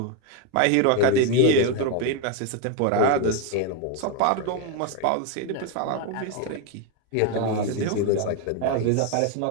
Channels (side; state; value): both; different; correlation 0.02